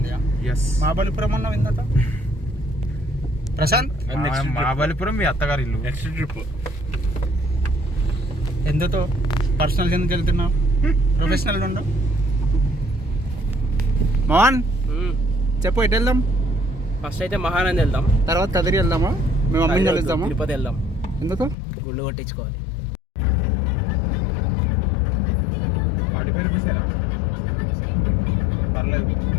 ఎస్. మహాబలిపురం అన్నావు ఇందాక. ప్రశాంత్ మహాబలిపురం మీ అత్తగారి ఇల్లు. నెక్స్ట్ ట్రిప్ ఎందుతో పర్సనల్ ఎందుకు వెళ్తున్నావు? ప్రొఫెషనల్ ఉండు. మోహన్ చెప్పు ఎటు వెళ్దాం? ఫస్ట్ అయితే మహానంది వెళ్దాం, తర్వాత కదిరి వెళ్దామా? మేము అమ్మిని వెళ్దామా? తిరుపతి వెళ్దాం, ఎందుకు? గుళ్ళు కొట్టించుకోవాలి. పర్లేదు.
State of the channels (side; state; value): right; drops out; at 21.6 s